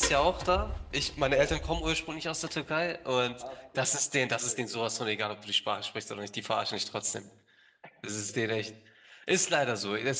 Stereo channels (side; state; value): both; identical; correlation 1.00